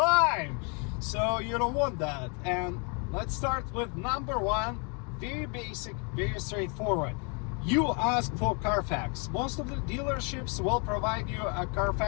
so you don't want that. And let's start with number 1, very basic, very straightforward. You ask for Carfax. Most of the dealerships will provide you a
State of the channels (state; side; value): quieter; right; 35.6 dB